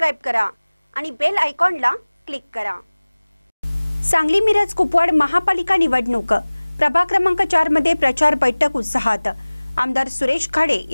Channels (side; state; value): both; inverted; correlation -1.00